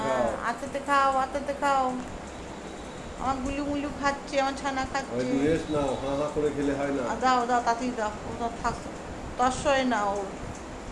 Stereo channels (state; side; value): identical; both; correlation 1.00